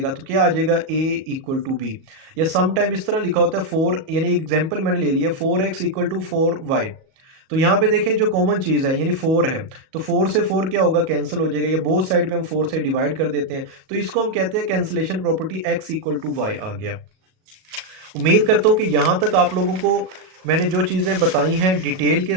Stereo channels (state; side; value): late; left; 37 ms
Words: तो क्या आ जाएगा, ए इक्वल टू बी। या सम टाइम इस तरह लिखा होता है फोर, यानी एग्जाम्पल मैंने ले लिया, 4x इक्वल टू 4y। तो यहाँ पे देखें जो कॉमन चीज़ है यानी 4 है, तो 4 से 4 क्या होगा, कैंसिल हो जाएगा, या बोथ साइड पे हम 4 से डिवाइड कर देते हैं, तो इसको हम कहते हैं cancellation property, x equal to y आ गया। उम्मीद करता हूँ कि यहाँ तक आप लोगों को मैंने जो चीज़ें बताई हैं डिटेल के